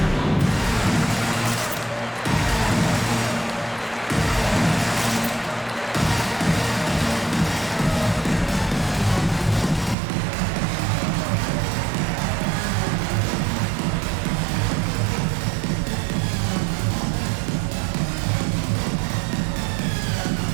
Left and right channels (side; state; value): left; drops out; at 10.0 s